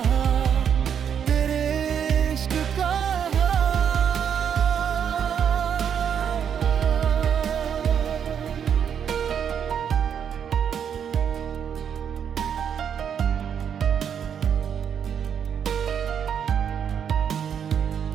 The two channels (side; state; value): left; quieter; 8.1 dB